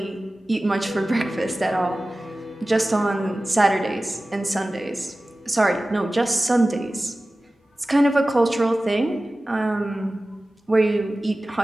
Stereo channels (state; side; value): normal; both; correlation 0.96